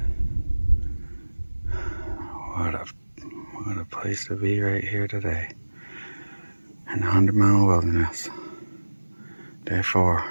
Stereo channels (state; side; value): inverted; both; correlation -1.00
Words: What a place to be right here today, in the 100-mile wilderness. Day 4,